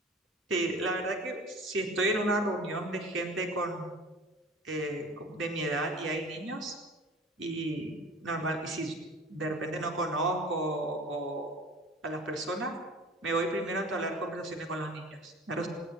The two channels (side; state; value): both; normal; correlation 0.41